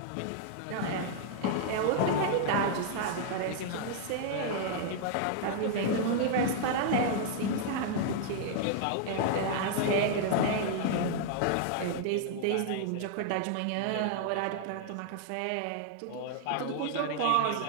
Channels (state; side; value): different; both; correlation -0.01